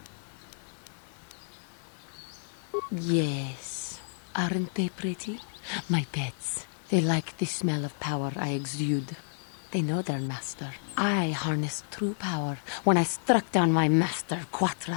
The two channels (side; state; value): right; silent; 57 dB below the other